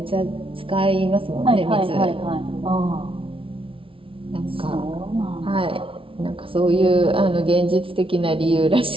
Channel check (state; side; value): late; left; 0.26 ms